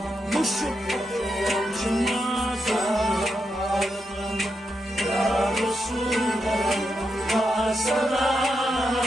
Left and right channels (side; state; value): both; normal; correlation 0.84